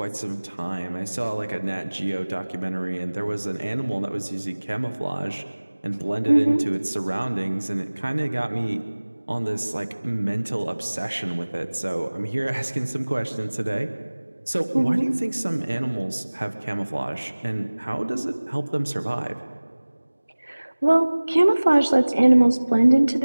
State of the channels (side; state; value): both; inverted; correlation -1.00